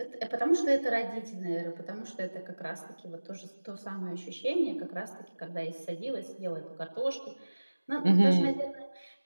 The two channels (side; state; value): both; inverted; correlation -1.00